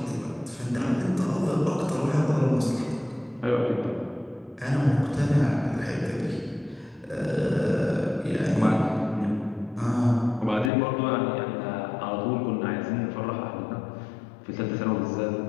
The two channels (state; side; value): drops out; right; at 10.7 s